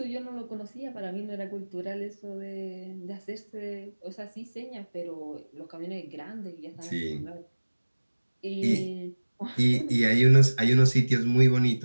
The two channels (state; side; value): inverted; both; correlation -1.00